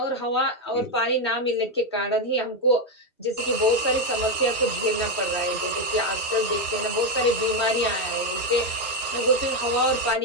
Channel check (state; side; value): normal; both; correlation 0.07